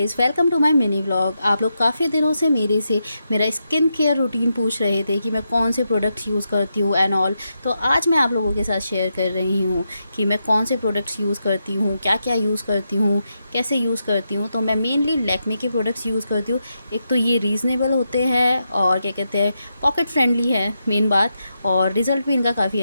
welcome to my mini vlog. आप लोग काफ़ी दिनों से मेरे से मेरा स्किन केयर रूटीन पूछ रहे थे कि मैं कौन से प्रोडक्ट्स यूज़ करती हूँ एंड ऑल। तो आज मैं आप लोगों के साथ शेयर कर रही हूँ कि मैं कौन से प्रोडक्ट्स यूज़ करती हूँ, क्या क्या यूज़ करती हूँ, कैसे यूज़ करती हूँ। तो मैं मेनली लैक्मे के प्रोडक्ट्स यूज़ करती हूँ। एक तो ये रीज़नेबल होते हैं और क्या कहते हैं, पॉकेट फ्रेंडली है मेन बात, और रिज़ल्ट भी इनका काफ़ी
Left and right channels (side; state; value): both; inverted; correlation -0.85